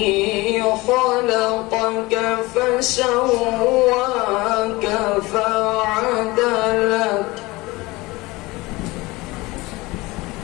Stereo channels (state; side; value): quieter; right; 21.9 dB